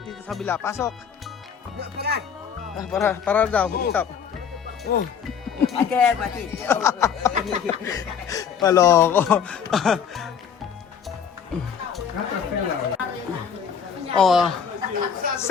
sa kabila. Pasok. Para daw. Stop. Aquí, aquí. Paloko. Oh.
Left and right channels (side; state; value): right; quieter; 7.4 dB